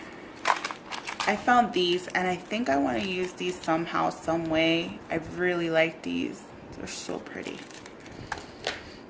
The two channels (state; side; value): identical; both; correlation 1.00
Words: I found these and I think I want to use these somehow, some way. I really like these. They're so pretty.